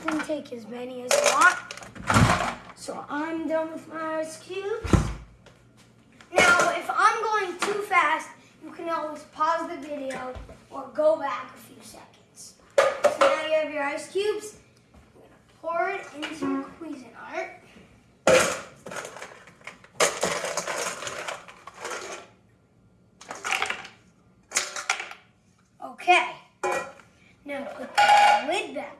take as many as you want. So I'm done with my ice cubes. Now, if I'm going too fast, you can always pause the video or go back a few seconds. So now you have your ice cubes. You're gonna pour it into your Cuisinart. Okay, now put the lid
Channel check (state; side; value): identical; both; correlation 1.00